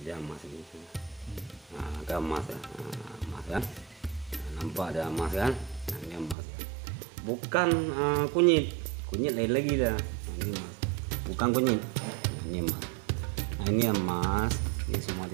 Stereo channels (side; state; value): left; drops out; at 6.4 s